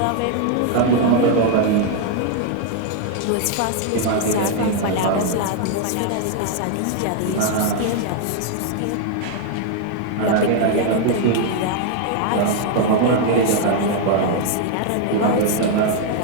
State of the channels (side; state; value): both; different; correlation 0.00